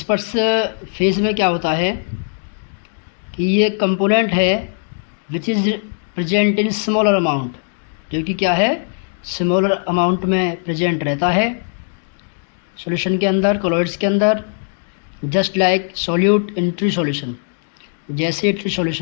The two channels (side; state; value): right; silent; 58 dB below the other